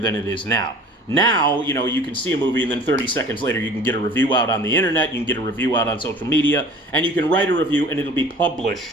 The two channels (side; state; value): both; normal; correlation 0.45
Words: it is now. Now, you can see a movie and then 30 seconds later you can get a review out on the internet, you can get a review out on social media, and you can write a review and it'll be